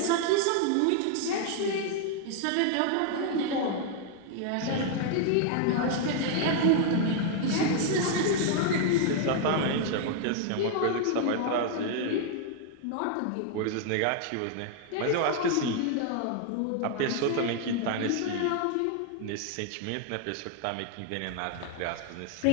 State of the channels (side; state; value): both; different; correlation 0.00